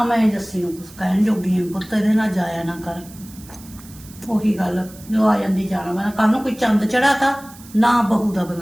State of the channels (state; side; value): noise; right; hiss, 21 dB below the sound